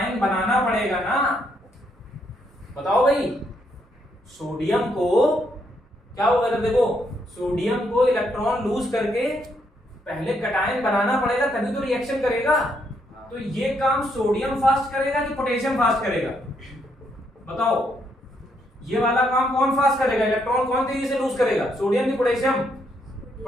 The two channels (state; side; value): normal; both; correlation 0.75